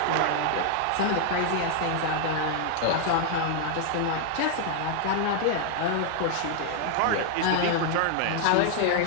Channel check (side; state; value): both; different; correlation 0.00